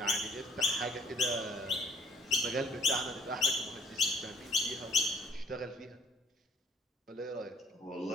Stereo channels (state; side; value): normal; both; correlation 0.59